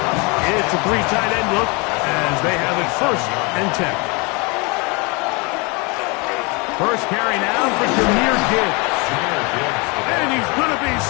It's a 3 tight end look as they have it 1st and 10. First carry now for Jahmyr Gibbs. And he's going to be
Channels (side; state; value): right; quieter; 29.3 dB